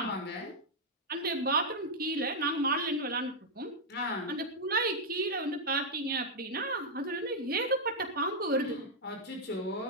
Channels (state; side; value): normal; both; correlation -0.03